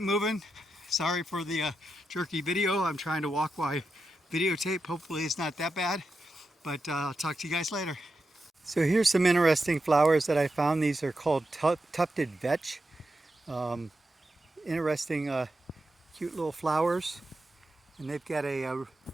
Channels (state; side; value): normal; both; correlation 0.88